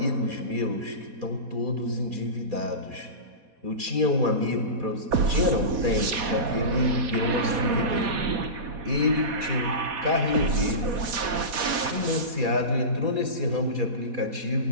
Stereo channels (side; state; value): left; late; 4.1 ms